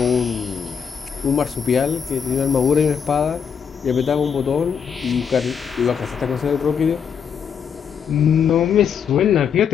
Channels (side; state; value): right; quieter; 7.1 dB